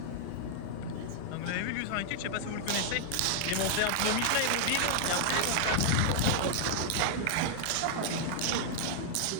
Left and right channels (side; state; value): both; different; correlation -0.01